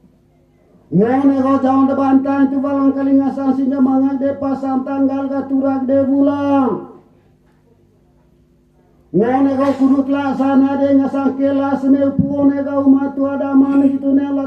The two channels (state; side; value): identical; both; correlation 1.00